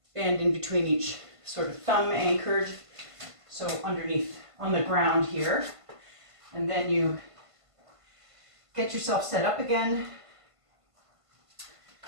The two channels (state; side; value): late; left; 1.5 ms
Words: in between each, sort of thumb anchored, so underneath on the ground here. And then you get yourself set up again.